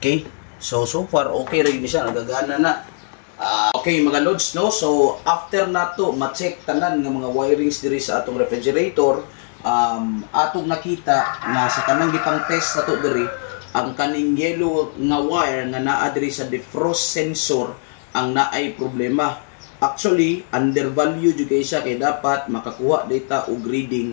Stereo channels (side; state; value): right; silent; 59 dB below the other